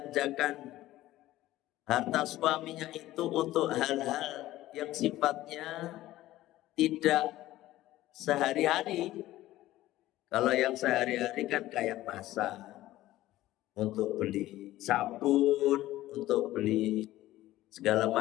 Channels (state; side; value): quieter; right; 15.5 dB